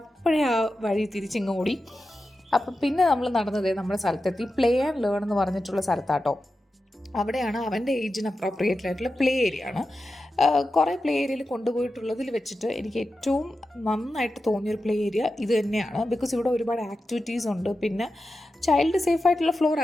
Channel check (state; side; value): normal; both; correlation 0.91